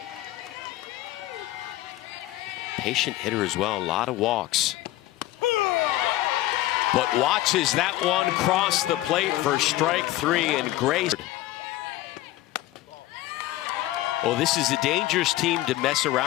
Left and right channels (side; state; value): right; quieter; 16.1 dB